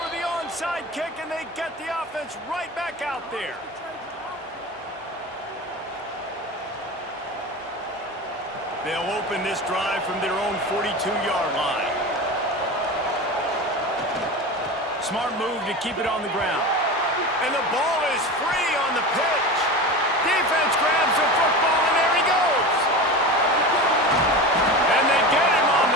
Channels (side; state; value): both; normal; correlation 0.28